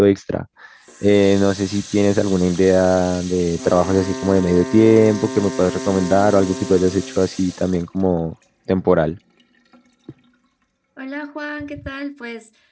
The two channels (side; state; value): both; identical; correlation 1.00